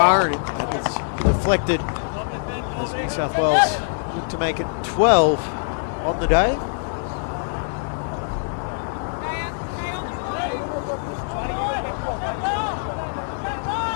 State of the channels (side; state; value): right; silent; digital silence